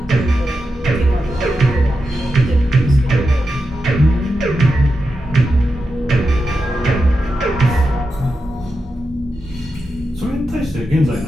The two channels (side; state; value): both; normal; correlation 0.88